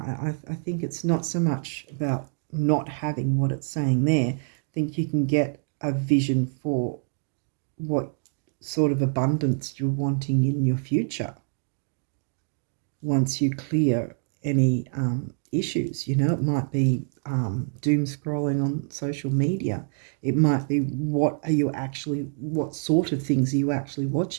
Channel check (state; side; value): silent; left; 56 dB below the other